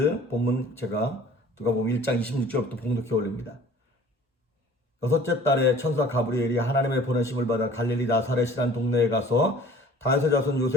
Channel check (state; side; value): normal; both; correlation 0.49